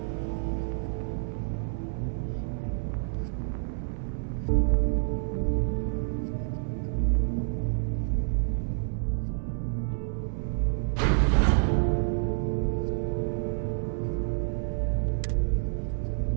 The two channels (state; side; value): silent; left; 59 dB below the other